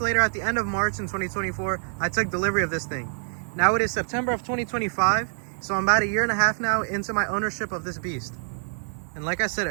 at the end of March in 2024, I took delivery of this thing. Now it is September of 2025, so I'm about a year and a half now into my ownership of this beast. And like I said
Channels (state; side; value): silent; left; 58 dB below the other